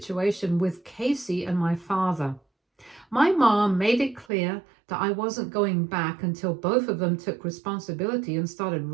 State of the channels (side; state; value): left; drops out; at 4.2 s